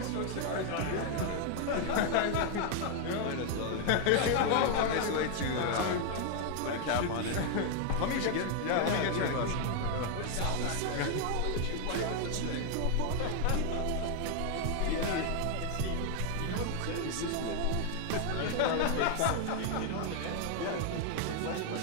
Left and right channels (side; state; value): both; different; correlation 0.00